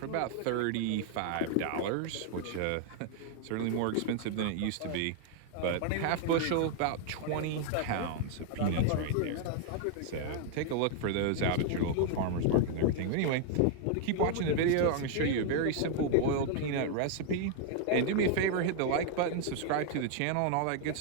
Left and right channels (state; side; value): different; both; correlation 0.00